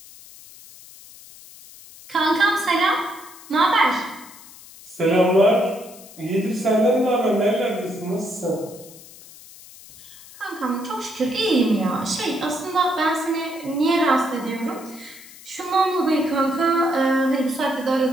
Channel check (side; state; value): left; noise; hiss, 20 dB below the sound